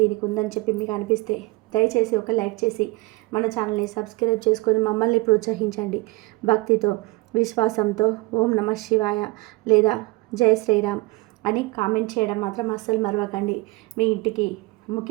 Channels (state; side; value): quieter; left; 22.6 dB